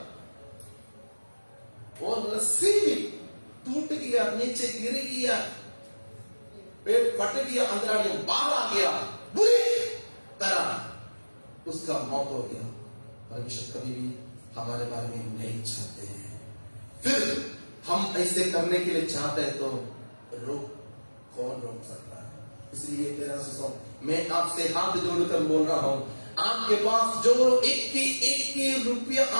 और रस्सी भी टूट गया, नीचे गिर गया, पेट फट गया, अंदर बाहर आ गया, बुरी तरह उसका मौत हो गया। परमेश्वर कभी भी हमारे बारे में नहीं चाहते हैं, फिर हम ऐसे करने के लिए चाहते हैं तो कौन रोक सकता है? इसलिए मेरा मैं आपसे हाथ जोड़कर बोल रहा हूं, आपके पास जो एक रुपया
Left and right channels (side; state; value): both; inverted; correlation -1.00